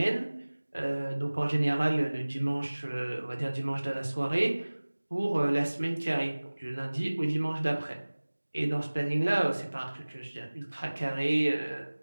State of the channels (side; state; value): both; inverted; correlation -1.00